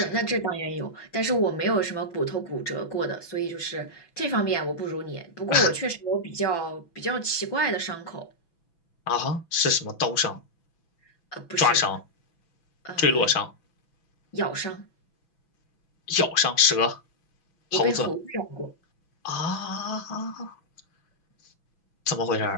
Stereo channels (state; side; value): late; right; 6.0 ms